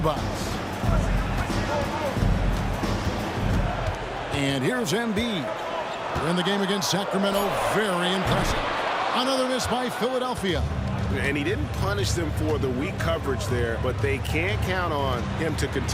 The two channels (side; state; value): both; identical; correlation 1.00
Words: And here's Embiid. In the game against Sacramento, very impressive. Another miss by Philadelphia. And he didn't punish them for the weak coverage there, but they can't count on him to